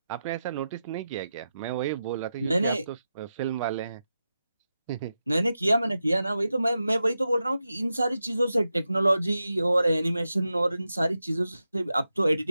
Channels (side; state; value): both; inverted; correlation -0.90